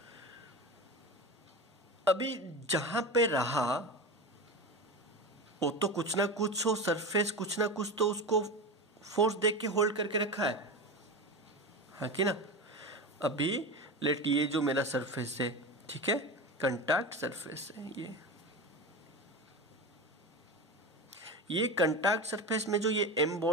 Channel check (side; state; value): both; normal; correlation 0.24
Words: अभी जहां पे रहा वो तो कुछ ना कुछ हो, सरफेस कुछ ना कुछ तो उसको फोर्स देख के होल्ड करके रखा है, हाँ कि ना? अभी लेट ये जो मेरा सरफेस है, ठीक है, कंटैक्ट सरफेस है, ये कंटैक्ट सरफेस में जो ये एम